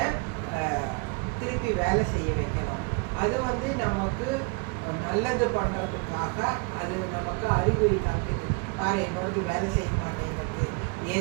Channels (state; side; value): quieter; left; 31.9 dB